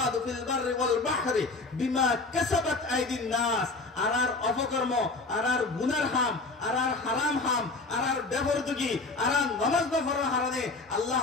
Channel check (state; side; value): quieter; right; 3.5 dB